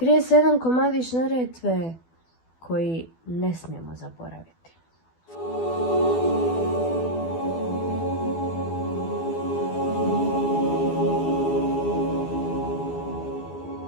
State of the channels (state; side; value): late; right; 12 ms